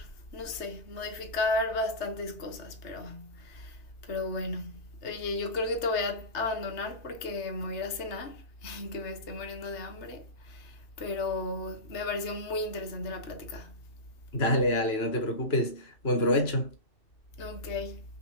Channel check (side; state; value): right; late; 2.6 ms